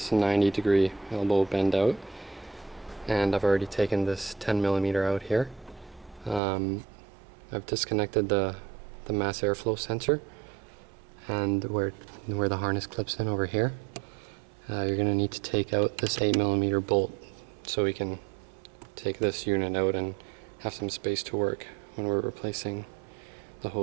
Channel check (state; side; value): drops out; left; at 6.4 s